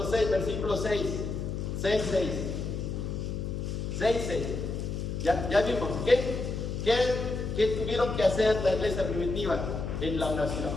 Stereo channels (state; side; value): noise; left; hum, 4 dB below the sound